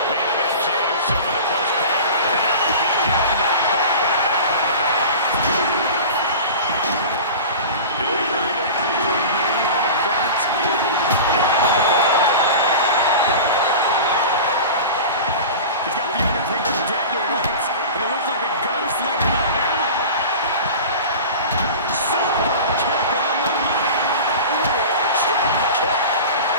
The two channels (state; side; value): inverted; both; correlation -0.34